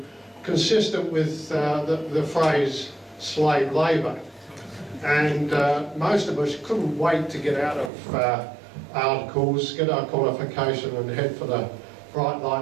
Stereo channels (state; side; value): drops out; left; at 7.9 s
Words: consistent with the phrase slave labour. And most of us couldn't wait to get out of articles, get our qualification and head for the bright